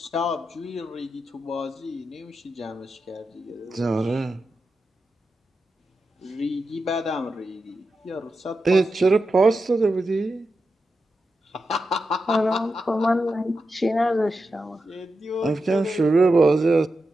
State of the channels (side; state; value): both; normal; correlation 0.89